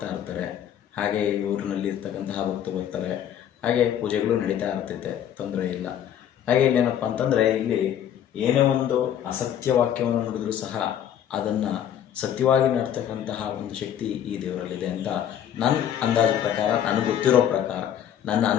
ಇರ್ತಾರೆ. ಹಾಗೆ ಈ ಊರಿನಲ್ಲಿ ಇರ್ತಕ್ಕಂತಹ ಭಕ್ತರು ಬರ್ತಾರೆ. ಹಾಗೆ ಪೂಜೆಗಳು ನಡೀತಾ ಇರ್ತೈತೆ, ತೊಂದರೆ ಇಲ್ಲ. ಹಾಗೆ ಇಲ್ಲೇನಪ್ಪ ಅಂತಂದರೆ, ಇಲ್ಲಿ ಏನೇ ಒಂದು ಅಸತ್ಯ ವಾಕ್ಯವನ್ನು ನುಡಿದ್ರೂ ಸಹ ಅದನ್ನು ಸತ್ಯವಾಗಿ ನಡ್ತಕ್ಕಂತಹ ಒಂದು ಶಕ್ತಿ ಈ ದೇವರಲ್ಲಿದೆ ಅಂತ ನನ್ನ ಅಂದಾಜು ಪ್ರಕಾರ, ನನಗೆ ಗೊತ್ತಿರೋ ಪ್ರಕಾರ, ನನ್ನ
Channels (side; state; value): right; quieter; 10.0 dB